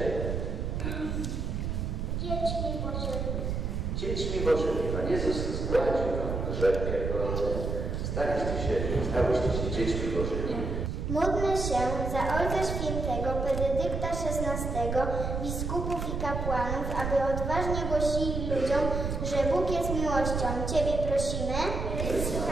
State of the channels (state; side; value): noise; right; rumble, 2 dB below the sound